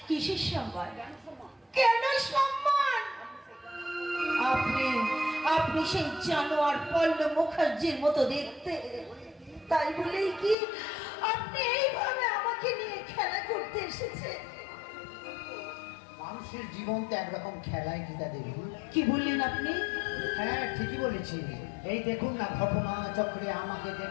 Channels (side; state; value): right; drops out; at 10.6 s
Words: কিসের সম্মান? কেন সম্মান? আপনি সেই জানোয়ার পল্লব মুখার্জির মতো দেখতে, তাই বলেই কি আপনি এইভাবে আমাকে নিয়ে খেলা করতে এসেছেন? মানুষের জীবন তো একরকম খেলায় গীতা দেবী। কি বললেন আপনি? হ্যাঁ, ঠিকই বলেছি। এই দেখুন না ঘটনা চক্রে আমাকে